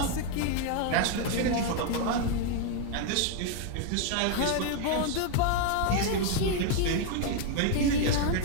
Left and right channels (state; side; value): different; both; correlation 0.00